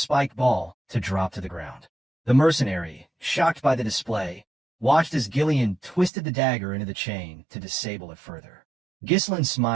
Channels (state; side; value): drops out; left; at 6.1 s